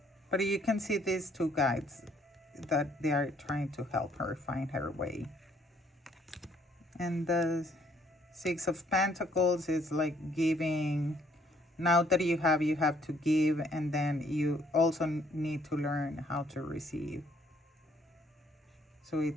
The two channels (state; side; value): normal; both; correlation 0.65